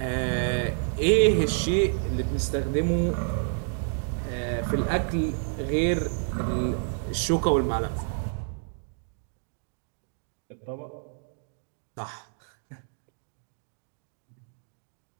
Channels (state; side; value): silent; left; 59 dB below the other